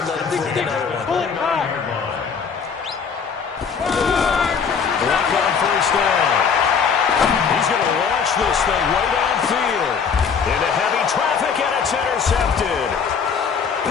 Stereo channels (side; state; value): right; quieter; 6.3 dB